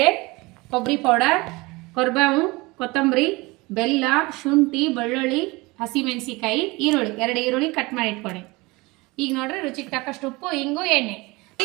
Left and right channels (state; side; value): quieter; left; 23.6 dB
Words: ಕೊಬ್ಬರಿ ಪೌಡರ್, ಕೊರ್ಬೇವು, ಕೊತ್ತಂಬರಿ, ಬೆಲ್ಲ, ಶುಂಠಿ, ಬೆಳ್ಳುಳ್ಳಿ, ಹಸಿಮೆಣಸಿಕಾಯಿ, ಈರುಳ್ಳಿ, 2 ಈರುಳ್ಳಿ ಕಟ್ ಮಾಡಿ ಇಟ್ಕೊಂಡೆ. ಈಗ ನೋಡ್ರಿ ರುಚಿಗೆ ತಕ್ಕಷ್ಟು ಉಪ್ಪು, ಹಿಂಗು, ಎಣ್ಣೆ.